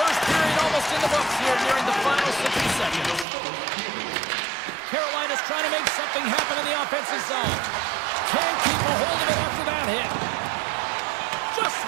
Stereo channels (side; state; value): left; drops out; at 3.2 s